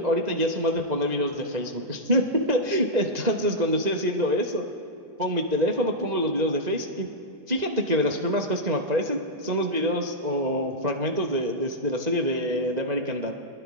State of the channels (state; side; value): late; left; 2.0 ms